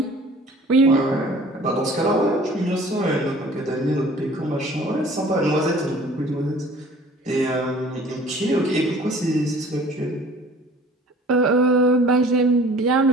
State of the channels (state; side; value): normal; both; correlation 0.49